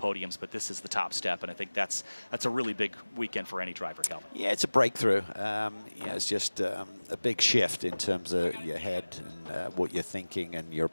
but this is the top step, and I think that's a really big weekend for any driver, Calvin. Yeah, it's a breakthrough. It's just a big shift in terms of your head and what you're thinking and your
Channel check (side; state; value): both; inverted; correlation -1.00